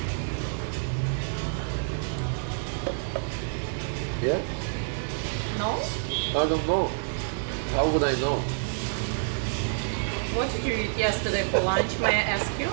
Yeah? No? I don't know. How would I know? What did you eat yesterday for lunch? May I ask you?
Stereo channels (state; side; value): silent; left; 59 dB below the other